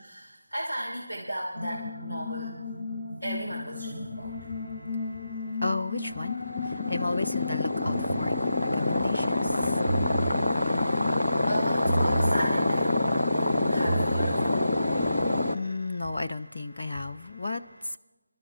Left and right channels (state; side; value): inverted; both; correlation -0.87